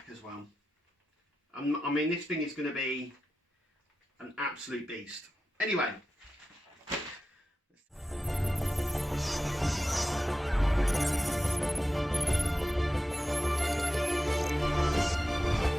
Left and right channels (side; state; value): both; normal; correlation 0.91